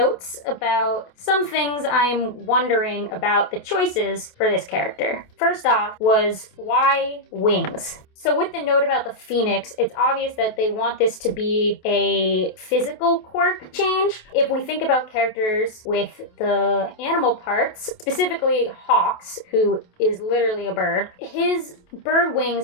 about some things I'm wondering about the choices for this character. First off was, why wings? So with the note about the Phoenix, it's obvious that they want this to be a physical quirk change. If we think about characters with the animal parts, specifically Hawks, who is literally a bird, his bird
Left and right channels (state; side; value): late; right; 28 ms